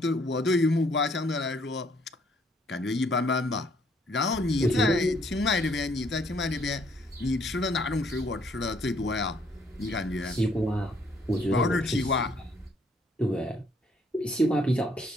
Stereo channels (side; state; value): both; normal; correlation 0.66